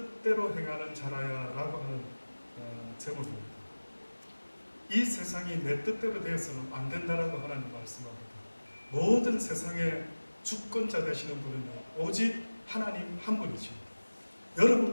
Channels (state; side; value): inverted; both; correlation -1.00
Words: 행하는 자라야 라고 하는 제목입니다. 이 세상이 내 뜻대로 되어서는 안 된다라고 하나님 말씀합니다. 모든 세상의 주권자 되시는 분은 오직 하나님 한 분이지.